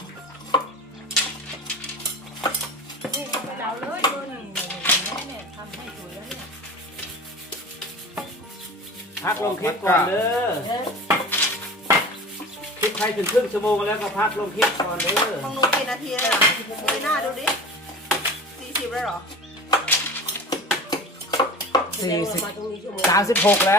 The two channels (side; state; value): both; normal; correlation 0.37